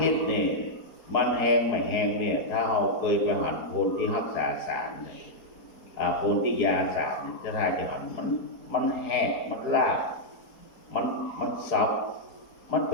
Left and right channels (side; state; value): right; late; 4.4 ms